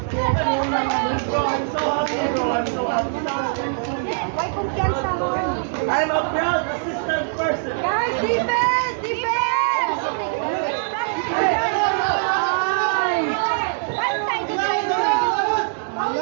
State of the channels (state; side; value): silent; left; digital silence